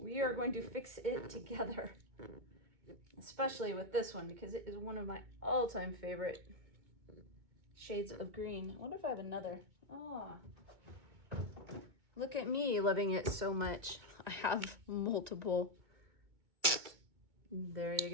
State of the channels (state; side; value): late; left; 2.2 ms